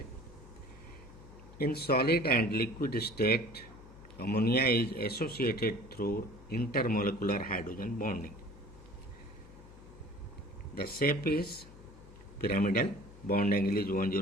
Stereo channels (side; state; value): left; noise; hum, 19 dB below the sound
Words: In solid and liquid state, ammonia is associated through intermolecular hydrogen bonding. The shape is pyramidal, bond angle is